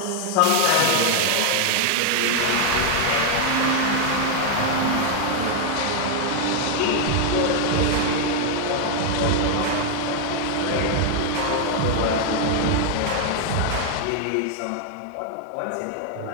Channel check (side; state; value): both; different; correlation 0.00